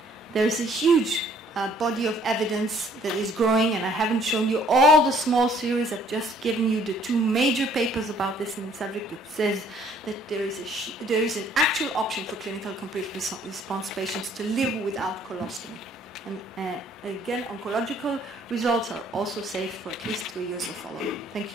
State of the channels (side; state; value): both; normal; correlation 0.60